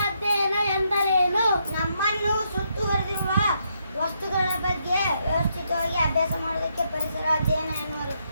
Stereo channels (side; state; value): both; inverted; correlation -0.77